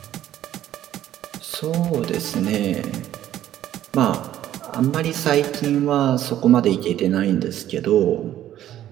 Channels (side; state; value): left; quieter; 12.2 dB